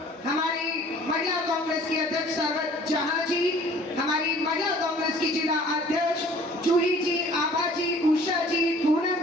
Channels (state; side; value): normal; both; correlation 0.52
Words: हमारी महिला कांग्रेस की अध्यक्ष सरवत जहां जी, हमारी महिला कांग्रेस की जिला अध्यक्ष जूही जी, आभा जी, उषा जी,